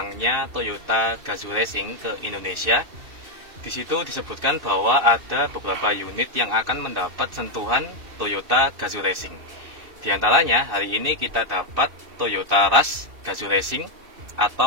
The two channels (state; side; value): late; left; 2.7 ms